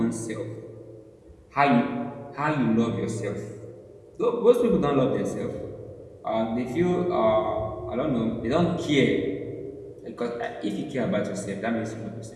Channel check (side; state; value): both; identical; correlation 1.00